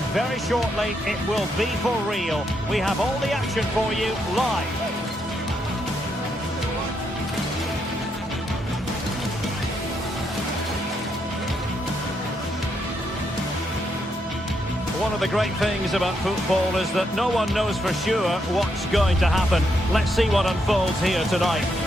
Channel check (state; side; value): normal; both; correlation 0.78